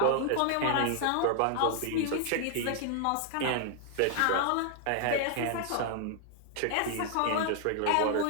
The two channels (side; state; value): both; different; correlation 0.00